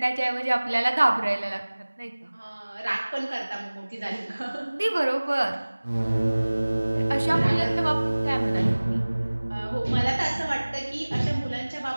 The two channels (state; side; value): inverted; both; correlation -1.00